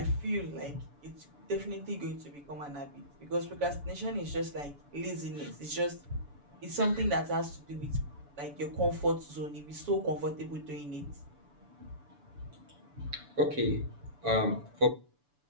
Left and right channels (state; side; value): late; left; 7.0 ms